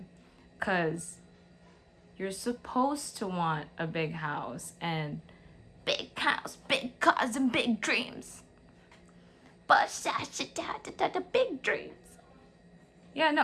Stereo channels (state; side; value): identical; both; correlation 1.00